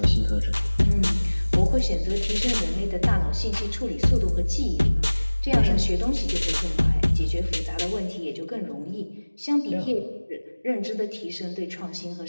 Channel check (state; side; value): inverted; both; correlation -1.00